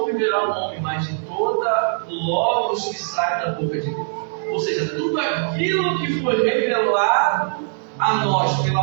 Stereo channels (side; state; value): left; silent; digital silence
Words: viverá o homem, mas de toda logos que sai da boca de Deus. Ou seja, tudo aquilo que foi revelado a nós